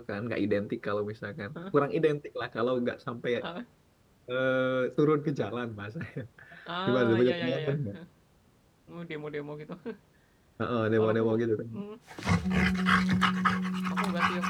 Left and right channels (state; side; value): identical; both; correlation 1.00